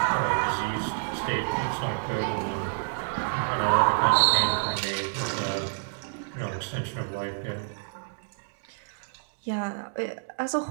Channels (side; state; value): left; silent; digital silence